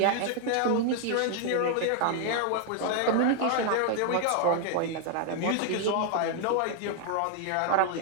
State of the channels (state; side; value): different; both; correlation 0.00